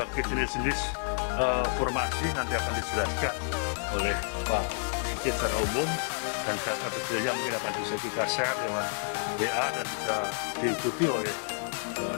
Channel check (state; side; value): silent; right; 57 dB below the other